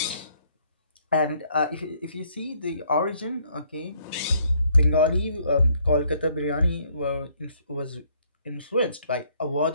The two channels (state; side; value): inverted; both; correlation -0.66